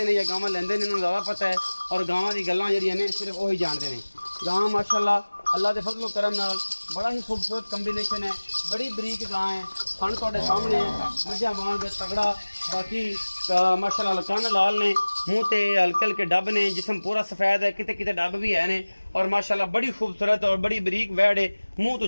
या गावां लेंदे ने इन्होंने ज़्यादा पता है और गावां की गल्लां जिहड़ियां ने सिर्फ वही जानते हैं। गां माशाल्लाह अल्लाह के फजलो करम नाल बड़ा ही खूबसूरत कॉम्बिनेशन है। बड़ी बरीक गां है फन तुहाडे सामने है मझा वांग तगड़ा। बाकी माशाल्लाह कन्न लाल ने मूँह ते हल्के हल्के डब ने जिसम पूरा सफ़ेद है किते किते डब भी है ने और माशाल्लाह बड़ी खूबसूरत और बड़ी बरीक वैड़ है। मूँह तो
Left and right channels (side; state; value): both; inverted; correlation -1.00